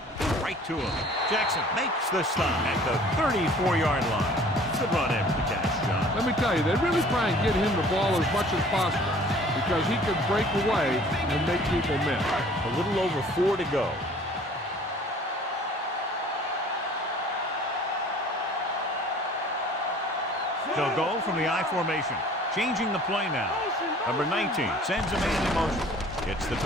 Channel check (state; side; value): normal; both; correlation 0.51